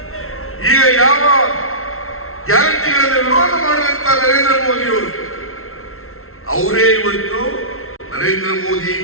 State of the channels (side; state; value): right; late; 0.62 ms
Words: ಈಗ ಯಾವ ಗ್ಯಾರಂಟಿಗಳನ್ನು ವಿರೋಧ ಮಾಡಿದಂತ ನರೇಂದ್ರ ಮೋದಿಯವರು ಅವರೇ ಇವತ್ತು ನರೇಂದ್ರ ಮೋದಿ